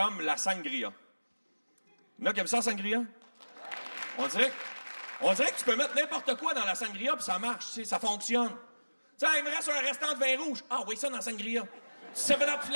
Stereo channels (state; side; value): inverted; both; correlation -1.00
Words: la sangria. Il y en a qui aiment ça, la sangria? On dirait que tu peux mettre n'importe quoi dans la sangria puis ça marche, tu sais, ça fonctionne. Tu sais, il me reste un restant de vin rouge. Ah, oui, ça dans la sangria. 7-Up